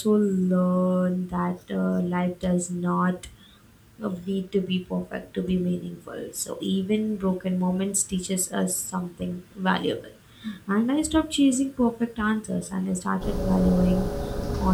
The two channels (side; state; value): both; identical; correlation 1.00